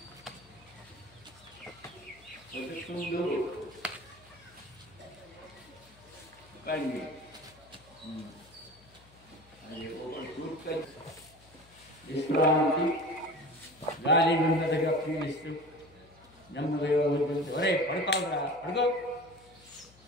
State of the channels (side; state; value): left; noise; hum, 26 dB below the sound